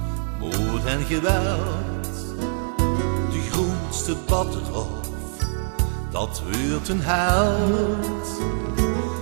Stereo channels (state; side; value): silent; left; digital silence